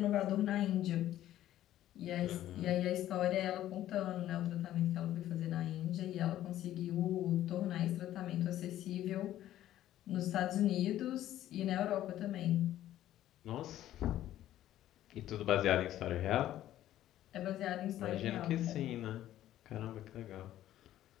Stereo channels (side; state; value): right; quieter; 13.0 dB